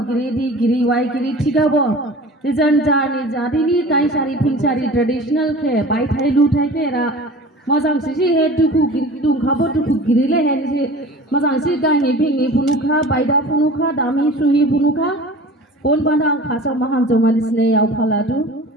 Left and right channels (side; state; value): both; normal; correlation 0.40